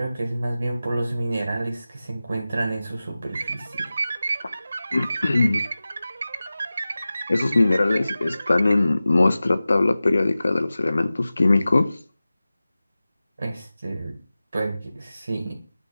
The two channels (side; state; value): both; inverted; correlation -0.96